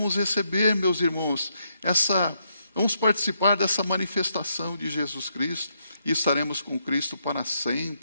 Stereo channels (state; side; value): inverted; both; correlation -0.77